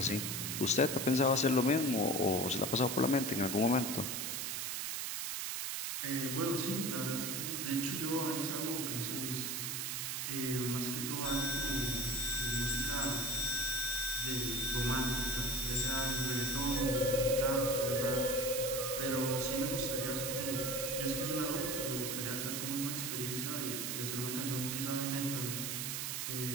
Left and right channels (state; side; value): noise; right; hiss, 2 dB below the sound